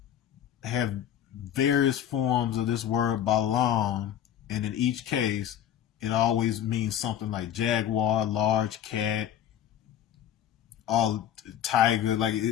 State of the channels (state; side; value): quieter; right; 10.4 dB